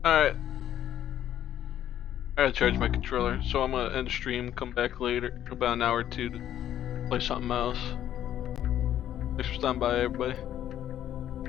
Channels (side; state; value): right; quieter; 11.2 dB